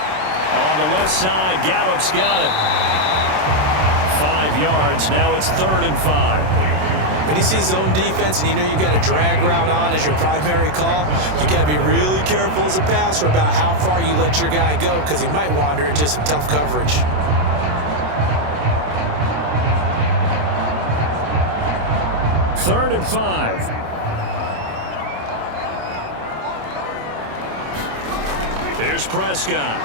On the left side, Gallup's got it. 5 yards. Now it's 3rd and 5. When you see zone defense and you know you've got a drag route on as your primary call, you got to be really careful as a passer about how far you let your guy go because he might wander into some tough coverage. Third and 5. Here's Prescott.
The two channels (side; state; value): left; late; 27 ms